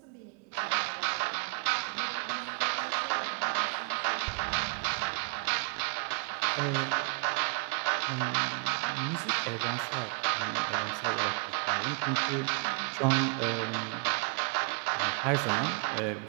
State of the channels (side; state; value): left; quieter; 36.8 dB